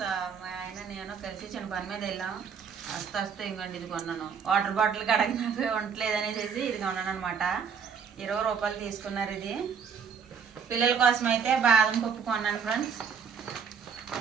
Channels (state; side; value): quieter; left; 6.5 dB